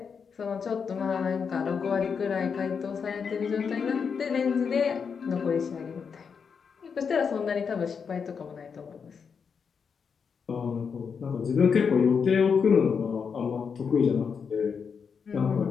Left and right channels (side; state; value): right; quieter; 6.2 dB